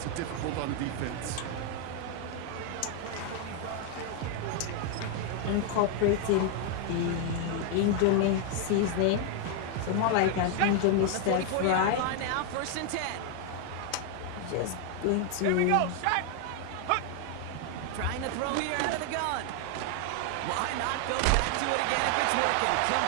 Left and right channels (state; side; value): different; both; correlation 0.00